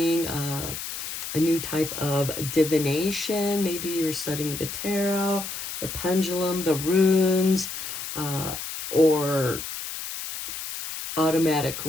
a new type of divination. Maybe you're studying the tarot, the pendulum, the runes, or automatic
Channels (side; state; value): left; noise; hiss, 7 dB below the sound